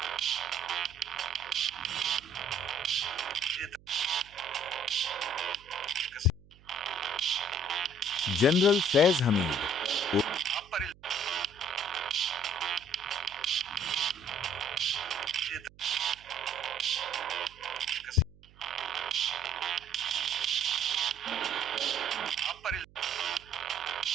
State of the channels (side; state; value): right; noise; hum, 25 dB below the sound